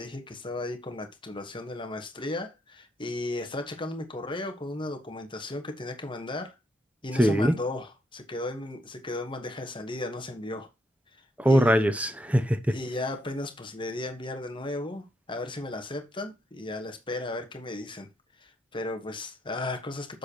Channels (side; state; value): both; normal; correlation 0.78